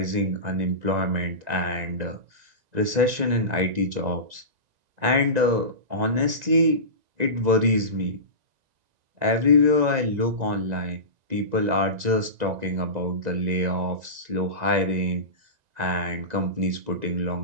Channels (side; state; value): left; late; 2.0 ms